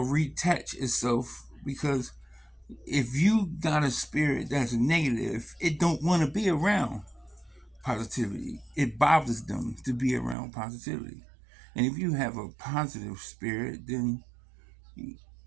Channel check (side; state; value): left; drops out; at 10.4 s